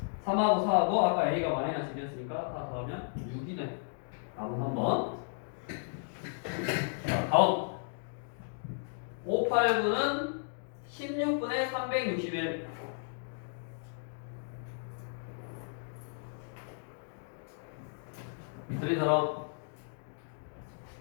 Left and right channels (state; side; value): silent; right; digital silence